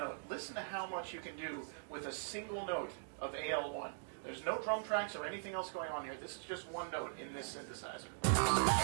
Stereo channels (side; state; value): left; silent; digital silence